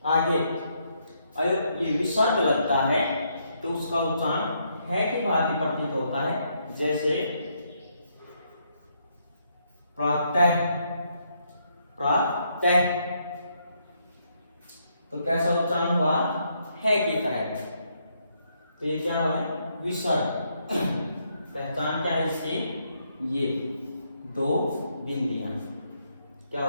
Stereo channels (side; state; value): both; inverted; correlation -0.75